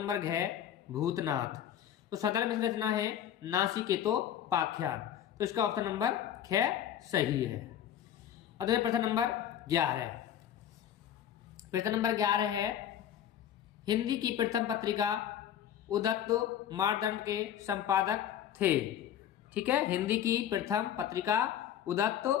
घ भूतनाथ। तो सदल मिश्र रचना है नाचिकेतोपाख्यान, तो इसका ऑप्शन नंबर ख सही है। अब देखिए प्रश्न नंबर 11। प्रश्न नंबर 11 है, हिंदी की प्रथम पत्रिका उदत्त मारदंड के संपादक थे। ठीक है, हिंदी की प्रथम पत्रिका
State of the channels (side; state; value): right; quieter; 10.2 dB